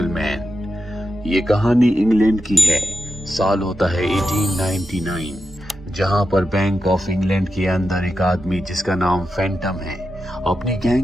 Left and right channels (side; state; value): both; normal; correlation 0.89